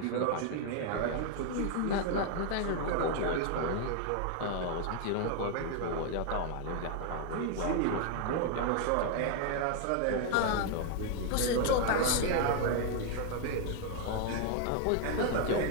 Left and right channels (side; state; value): both; different; correlation 0.00